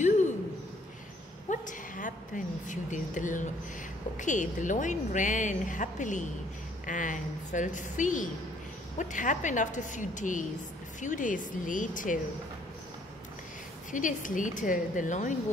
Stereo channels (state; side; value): normal; both; correlation 0.63